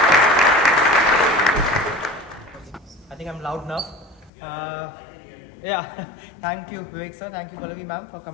I think I'm loud enough. Yeah, thank you Vivek sir, thank you Pallavi ma'am for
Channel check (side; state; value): right; drops out; at 4.3 s